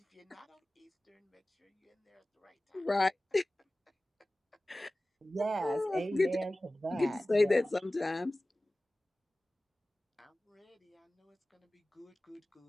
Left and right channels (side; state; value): both; normal; correlation 0.97